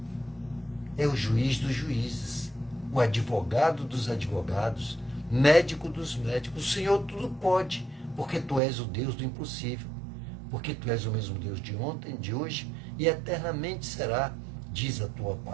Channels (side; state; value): left; drops out; at 8.6 s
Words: é o juiz dos juízes, o advogado dos advogados, médico dos médicos. O Senhor tudo pode, porque Tu és o Deus do impossível, porque Tu és o mesmo Deus de ontem, de hoje e eternamente será, diz a Tua